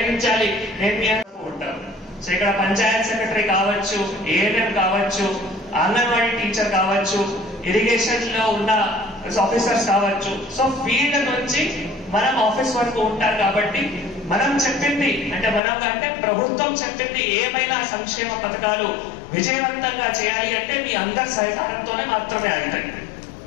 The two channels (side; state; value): right; drops out; at 15.6 s